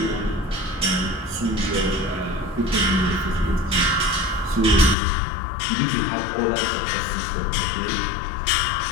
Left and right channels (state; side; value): drops out; right; at 5.0 s